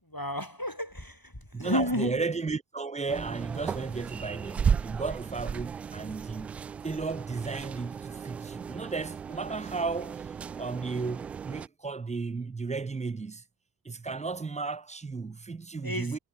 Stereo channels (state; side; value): quieter; left; 3.7 dB